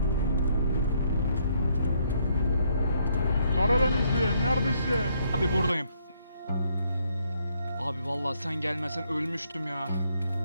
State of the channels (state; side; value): inverted; both; correlation -0.71